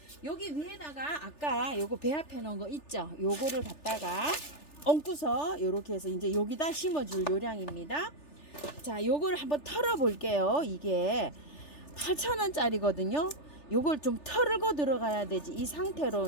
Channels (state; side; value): late; right; 3.4 ms